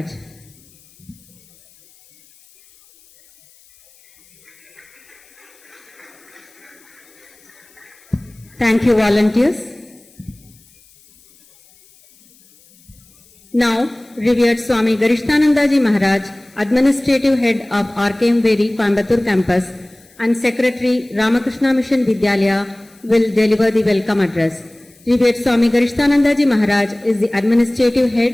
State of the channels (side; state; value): left; noise; hiss, 29 dB below the sound